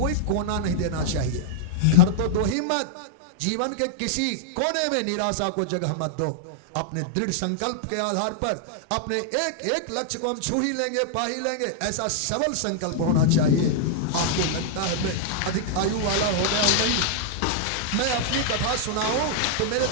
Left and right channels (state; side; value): different; both; correlation -0.01